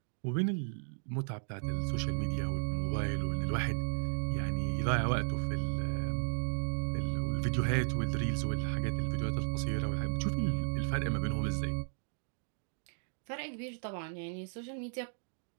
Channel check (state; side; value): silent; left; digital silence